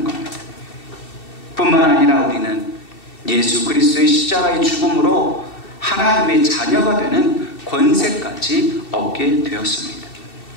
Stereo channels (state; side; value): late; right; 2.7 ms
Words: 겁니다. 뿐만 아니라 우리는 예수 그리스도의 십자가의 죽음으로 하나님의 자녀가 되는 권세까지 얻게 되었습니다.